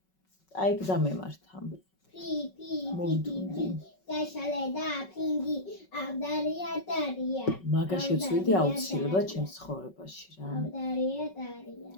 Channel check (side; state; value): right; late; 5.3 ms